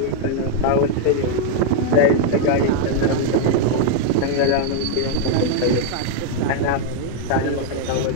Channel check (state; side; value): different; both; correlation 0.00